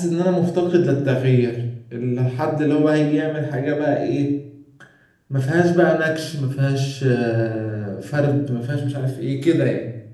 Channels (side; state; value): both; identical; correlation 1.00